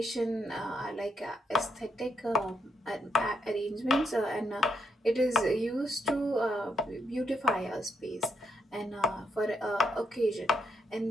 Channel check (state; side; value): normal; both; correlation 0.78